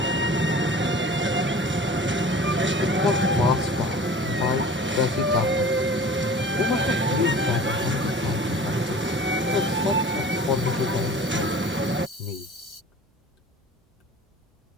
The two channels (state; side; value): normal; both; correlation 0.42